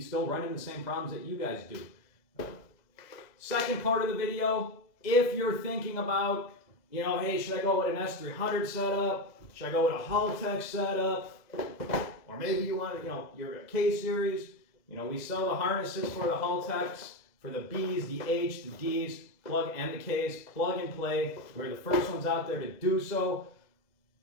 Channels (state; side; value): late; right; 2.0 ms